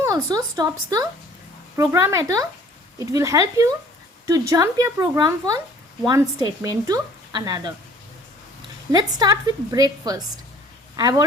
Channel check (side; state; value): both; normal; correlation 0.53